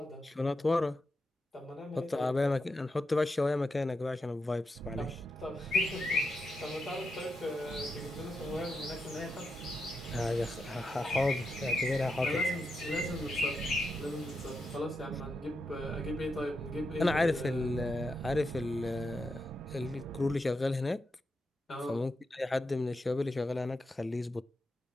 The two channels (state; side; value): normal; both; correlation 0.86